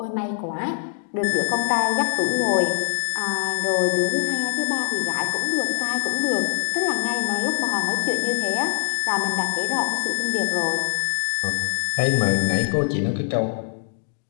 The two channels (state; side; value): silent; right; digital silence